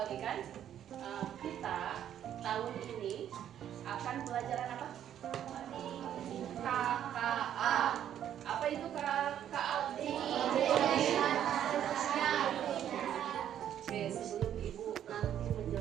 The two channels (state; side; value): quieter; left; 10.3 dB